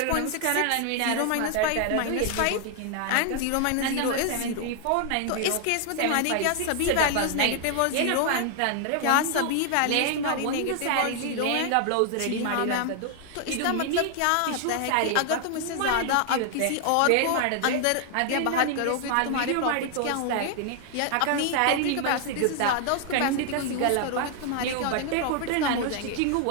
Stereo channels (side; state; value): both; different; correlation 0.00